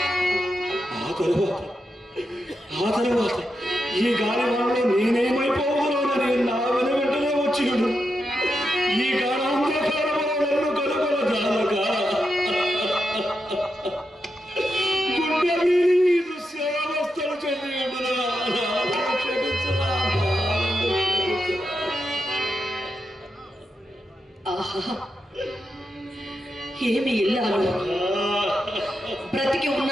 ఆ తరువాత ఈ గాలి వాళ్ళలో నేనేమైపోగలనని నా వెంటనే వచ్చిడు. ఈ గాఢాంధకారము నన్ను కనుగొన జాలక గుండె వీరి దృశ్యావస్థలు చెందిండునా. ఆహా, ఏమి ఇల్లాలు! బ్రతికి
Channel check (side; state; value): both; normal; correlation 0.86